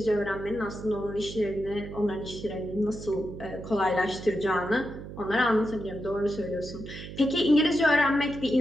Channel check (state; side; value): noise; right; hum, 11 dB below the sound